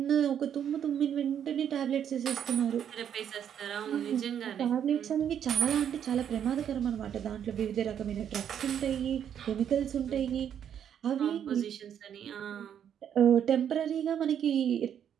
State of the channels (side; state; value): left; quieter; 9.0 dB